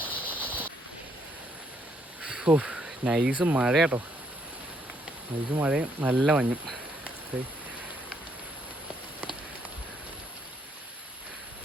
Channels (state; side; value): normal; both; correlation 0.71